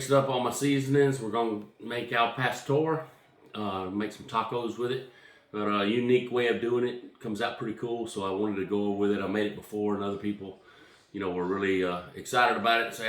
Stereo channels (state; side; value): identical; both; correlation 1.00